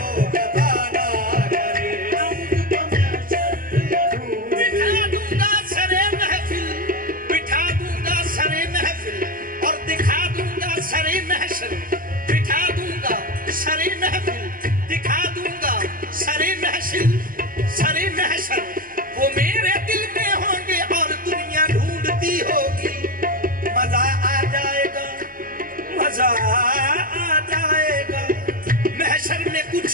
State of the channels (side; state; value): left; late; 0.41 ms